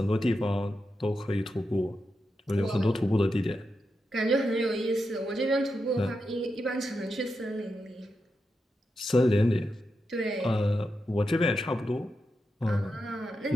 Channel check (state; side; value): normal; both; correlation 0.87